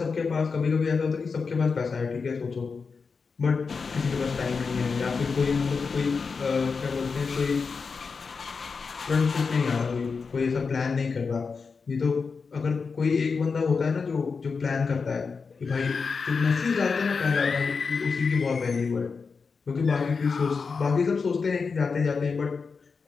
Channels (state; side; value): quieter; right; 5.0 dB